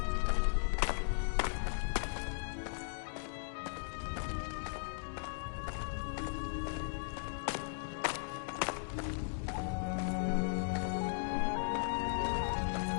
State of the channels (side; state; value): right; silent; digital silence